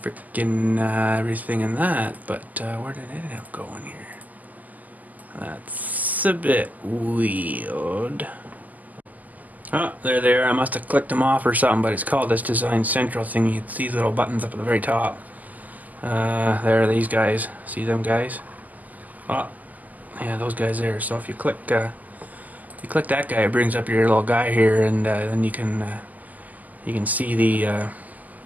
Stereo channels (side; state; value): left; late; 0.080 ms